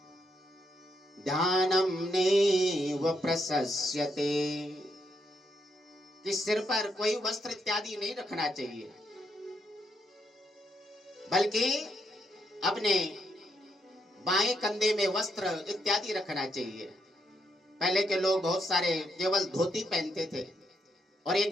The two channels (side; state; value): both; normal; correlation 0.78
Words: ध्यानम नैव प्रशस्यते, कि सिर पर कोई वस्त्र इत्यादि नहीं रखना चाहिए, बल्कि अपने बाएं कंधे में वस्त्र इत्यादि रखना चाहिए। पहले के लोग बहुत सारे केवल धोती पहनते थे और